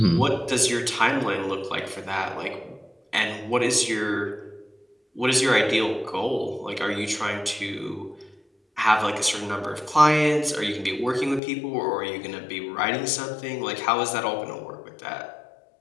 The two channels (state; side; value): drops out; right; at 11.4 s